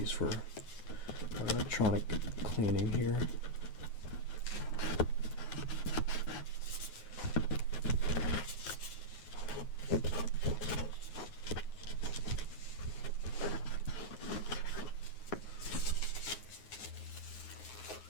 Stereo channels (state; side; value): late; right; 9.5 ms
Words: for electronic cleaning here.